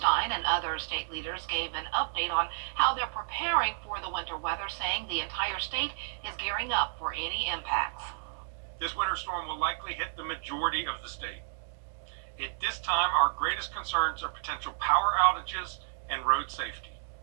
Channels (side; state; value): left; silent; digital silence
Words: and other state leaders gave an update on how they're preparing for the winter weather, saying the entire state is gearing up for any impacts. This winter storm will likely hit the majority of the state. At this time, our greatest concerns are potential power outages and road safety.